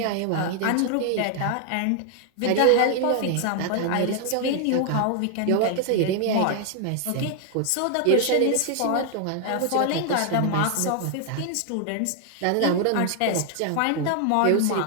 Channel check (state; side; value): different; both; correlation 0.00